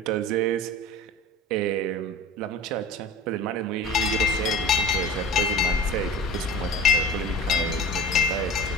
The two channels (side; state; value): both; normal; correlation 0.35